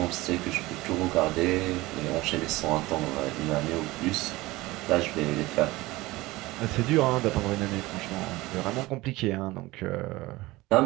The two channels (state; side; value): quieter; left; 19.9 dB